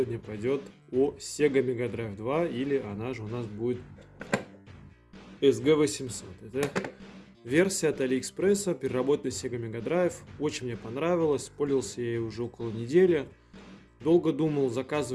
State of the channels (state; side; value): identical; both; correlation 1.00